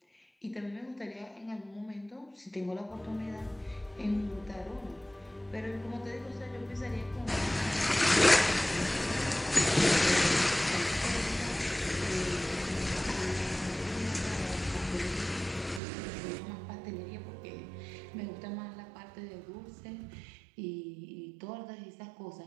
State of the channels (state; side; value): drops out; left; at 15.8 s